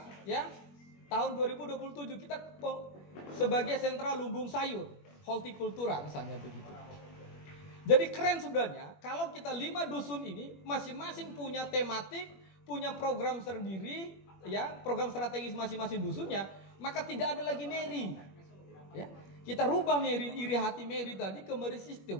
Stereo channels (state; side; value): late; right; 21 ms